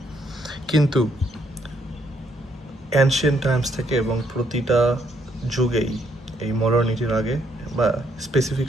কিন্তু অ্যানশিয়েন্ট টাইমস থেকে এবং প্রতিটা যুগেই এই মডার্নিটির আগে বা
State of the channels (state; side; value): normal; both; correlation 0.72